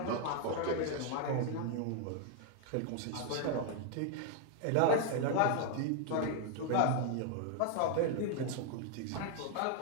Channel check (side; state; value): both; different; correlation 0.00